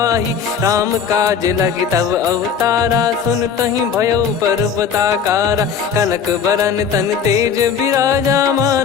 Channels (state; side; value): quieter; right; 7.0 dB